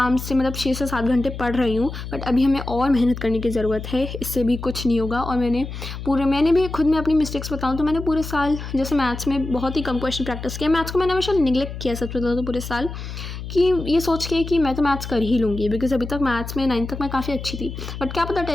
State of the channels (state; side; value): noise; left; hum, 8 dB below the sound